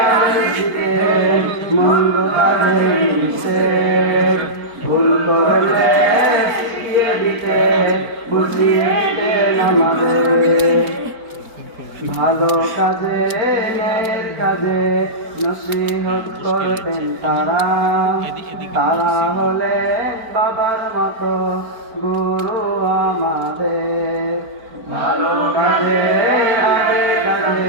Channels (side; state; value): left; late; 4.7 ms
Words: আদেশ দিতেন, মন্দ কাজে নিষেধ, ভুল করলে শিখিয়ে দিতেন, বুঝিয়ে দিতেন আমাদের। ভালো কাজে ন্যায়ের কাজে নসিহত করতেন তারা, তারা হলেন বাবার মতো গুরু আমাদের। ভালো কাজে আগে